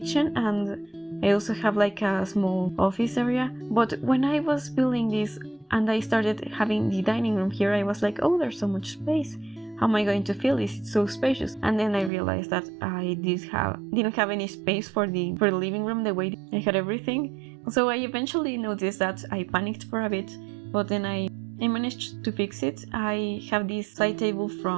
and I also have like a small office area. But when I was building this and I started having the dining room here, I was like, oh, there's so much space. How am I going to fill this? It's so spacious. And then I realized that I didn't have any space for the living room the way I had everything. So I eventually noticed that I panicked for a bit, but then I managed to fix it. I have this side table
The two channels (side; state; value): left; drops out; at 12.1 s